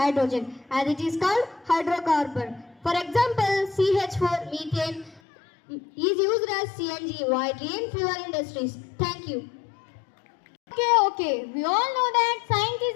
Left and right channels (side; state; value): right; drops out; at 5.2 s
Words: as it is called hydrocarbon. For example, CH4, methane, is used as CNG widely in fuel industries. Thank you. Okay. We all know that science is